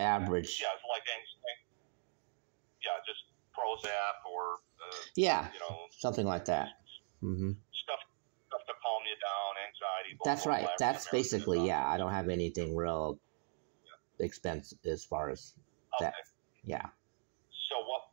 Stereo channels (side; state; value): left; silent; digital silence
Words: Yeah, it's like anxiety. Yeah, just Prozac or something like that. Mm-hmm. Stuff to calm you down, anxiety. That's right. That's basically I don't have anything real expensive as far as that. Yeah. So